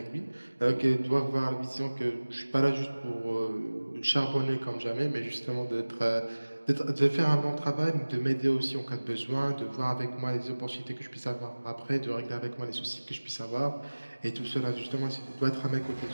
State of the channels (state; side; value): inverted; both; correlation -1.00